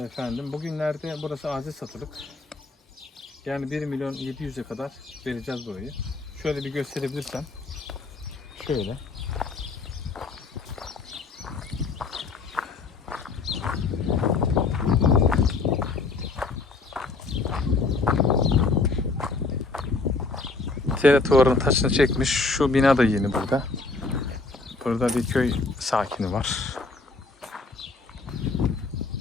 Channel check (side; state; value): right; quieter; 3.8 dB